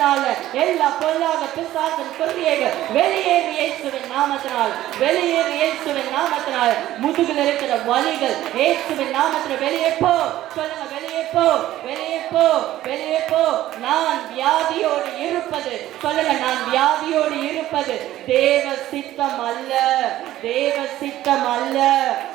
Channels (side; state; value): left; quieter; 14.2 dB